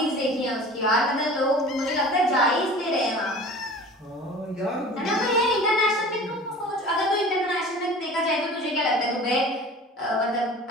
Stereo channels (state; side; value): normal; both; correlation 0.41